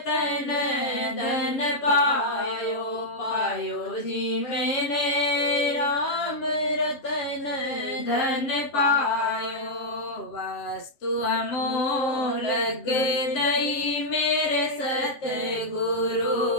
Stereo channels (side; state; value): right; late; 7.4 ms